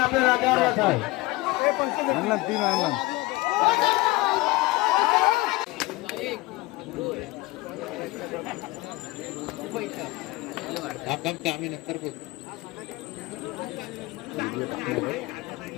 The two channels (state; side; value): quieter; right; 21.0 dB